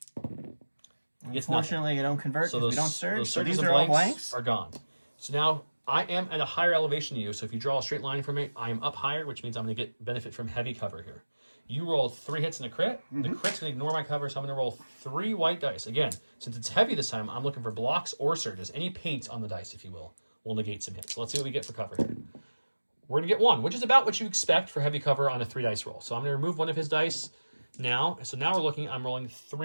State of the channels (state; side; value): inverted; both; correlation -1.00